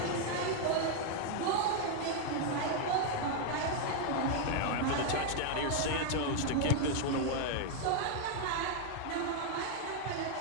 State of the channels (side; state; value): both; different; correlation 0.00